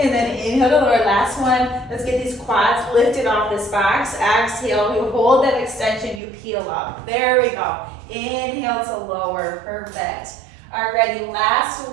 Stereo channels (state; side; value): drops out; left; at 6.2 s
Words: then inhale to lower, last one. Let's get these quads lifted off this box. Exhale, you hold that extension, you peel up. There we go. Inhale to lower, perfect. Alrighty, last